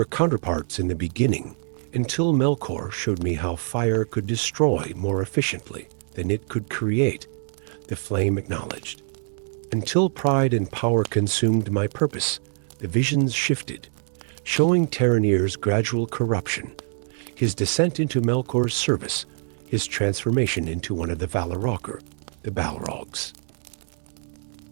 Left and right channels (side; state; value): left; silent; digital silence